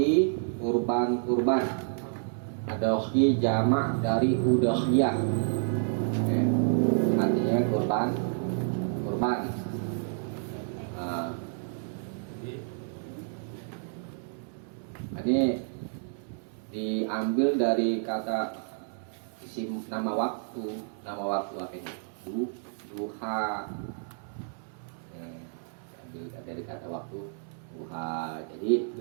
kurban. Adhohi jamak dari udhiyah. Artinya kurban. Ini diambil dari kata isim nama waktu apa ini? Duha. Ambil dari kata waktu duha. Jadi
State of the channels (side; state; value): left; silent; 58 dB below the other